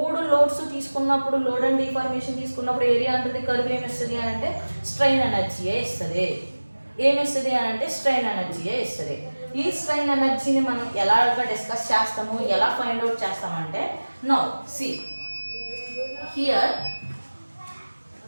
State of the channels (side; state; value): both; inverted; correlation -1.00